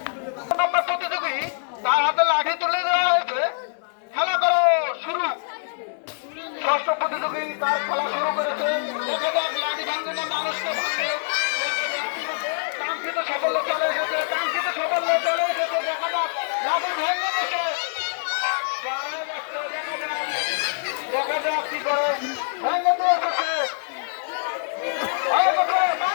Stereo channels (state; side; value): silent; right; digital silence